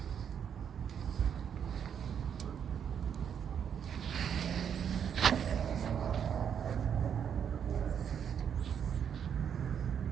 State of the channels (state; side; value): quieter; left; 8.1 dB